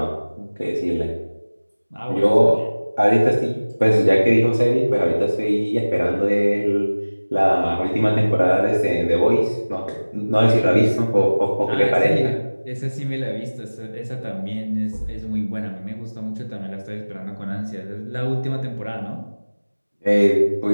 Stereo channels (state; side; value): inverted; both; correlation -1.00